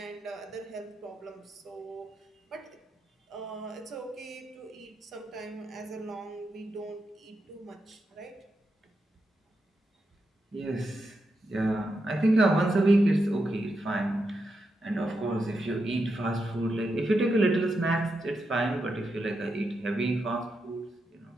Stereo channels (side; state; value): both; normal; correlation 0.85